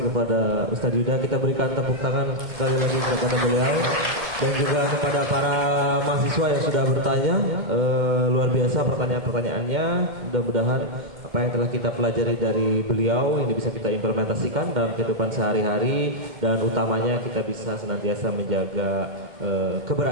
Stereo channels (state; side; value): late; left; 2.1 ms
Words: kepada Ustadz Yuda. Kita berikan tepuk tangan sekali lagi kepada beliau dan juga kepada para mahasiswa yang sudah bertanya. Luar biasa pertanyaan-pertanyaannya. Mudah-mudahan apa yang telah kita pelajari dari beliau ini bisa kita implementasikan dalam kehidupan sehari-hari, dan utamanya kita bisa senantiasa menjaga